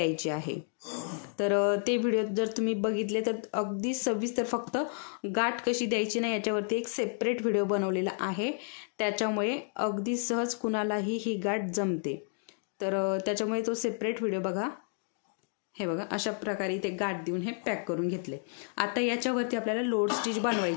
आहे। तर ते व्हिडिओ जर तुम्ही बघितले तर अगदी सविस्तर फक्त गाठ कशी द्यायची नाही याच्यावरती एक सेपरेट व्हिडिओ बनवलेला आहे। त्याच्यामुळे अगदी सहज कुणालाही ही गाठ जमते। तर त्याच्यामुळे तो सेपरेट व्हिडिओ बघा। हे बघा अशा प्रकारे ते गाठ देऊन हे पॅक करून घेतले। आता याच्यावरती आपल्याला लोड स्टिच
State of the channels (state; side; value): silent; right; 57 dB below the other